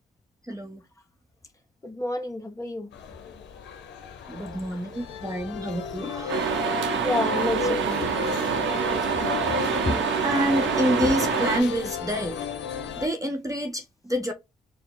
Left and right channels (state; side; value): normal; both; correlation 0.46